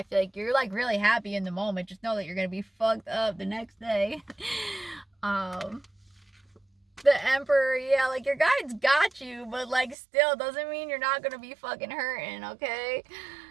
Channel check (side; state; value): left; drops out; at 10.0 s